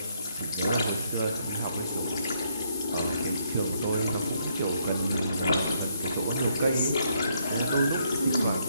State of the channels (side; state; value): both; inverted; correlation -0.73